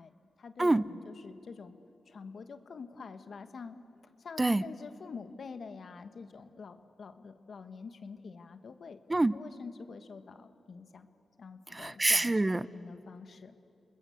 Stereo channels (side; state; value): both; normal; correlation 0.98